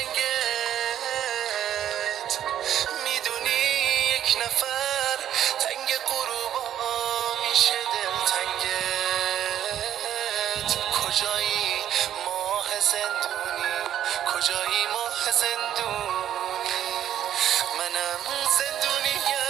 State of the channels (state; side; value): quieter; left; 10.9 dB